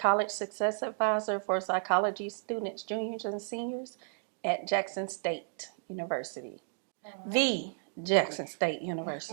Success Advisor for psychology students, juniors, and seniors at Jackson State University. The Jackson State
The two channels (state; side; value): silent; left; digital silence